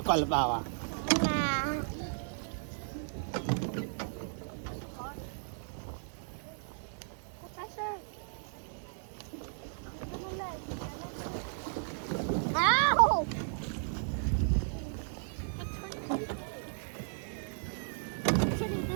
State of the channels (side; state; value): left; silent; 55 dB below the other